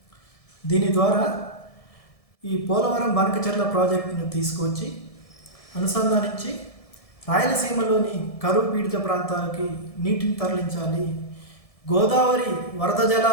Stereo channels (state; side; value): late; right; 1.7 ms